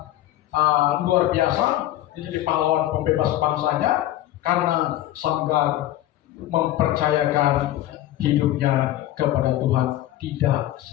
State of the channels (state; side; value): quieter; right; 14.1 dB